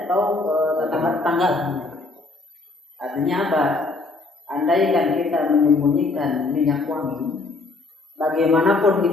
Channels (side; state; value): right; quieter; 3.4 dB